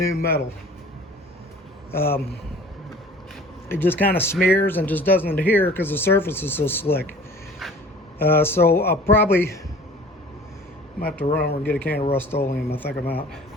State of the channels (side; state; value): both; normal; correlation 0.46